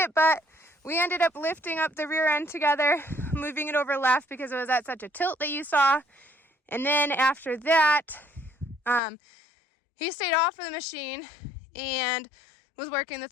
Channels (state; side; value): drops out; right; at 9.0 s